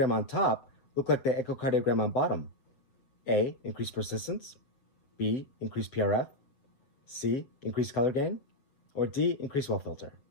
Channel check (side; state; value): right; late; 7.3 ms